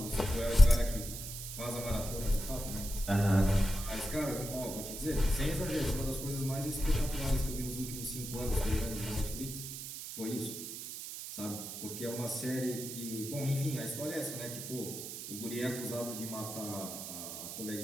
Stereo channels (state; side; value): noise; right; hiss, 8 dB below the sound